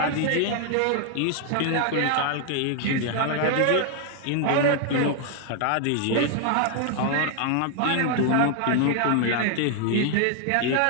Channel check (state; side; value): different; both; correlation 0.00